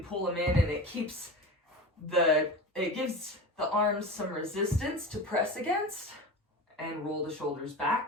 pull them in and it gives the arms some resistance to press against and roll the shoulders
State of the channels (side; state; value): both; normal; correlation 0.29